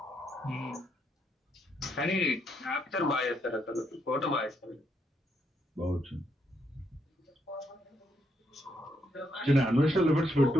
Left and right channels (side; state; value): both; normal; correlation 0.77